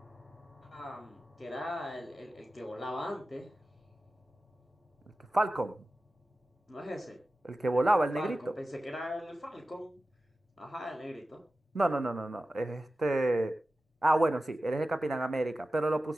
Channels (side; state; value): both; normal; correlation 0.94